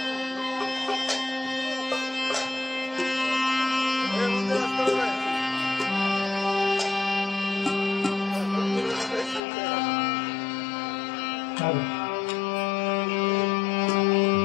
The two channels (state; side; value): drops out; right; at 9.4 s